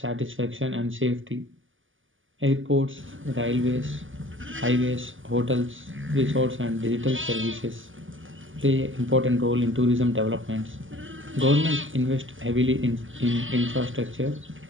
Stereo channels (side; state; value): left; late; 0.58 ms